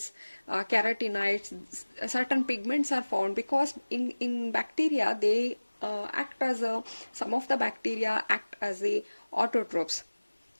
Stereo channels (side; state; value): both; inverted; correlation -1.00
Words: carotenoids. Certain pigments are found because in bacteria they act as some of the bacteria act as autotrophs.